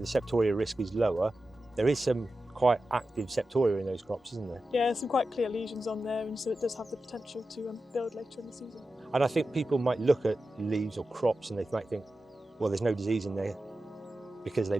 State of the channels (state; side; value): normal; both; correlation 0.92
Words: risk is lower, there is some quite active Septoria in those crops, isn't there? Yeah, some quite clear lesions on there, and so it does have the potential to build later in the season. And I think people might look at leaves or crops and they might think, well, there's no disease in there because they